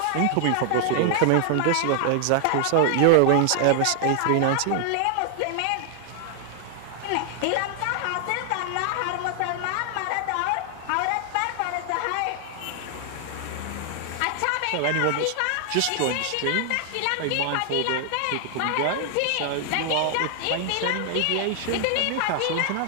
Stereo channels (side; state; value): both; different; correlation 0.00